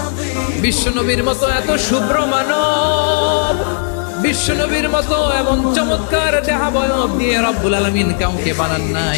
বিশ্বনবীর মতো এত শুভ্র মানব, বিশ্বনবীর মতো এমন চমৎকার দেহাবয়ব দিয়ে রব্বুল আলামিন কাউকে বানান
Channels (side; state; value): right; silent; digital silence